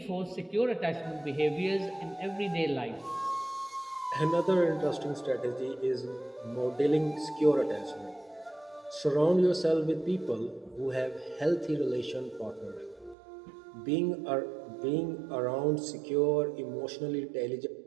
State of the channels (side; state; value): left; drops out; at 13.2 s